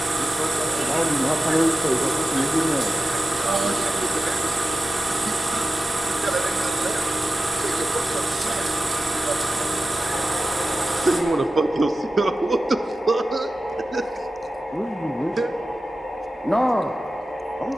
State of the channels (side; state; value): both; normal; correlation 0.93